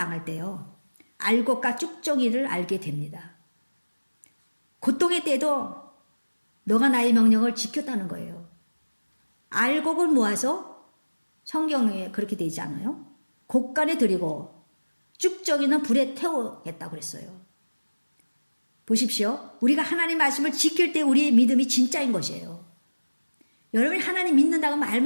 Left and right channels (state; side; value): inverted; both; correlation -1.00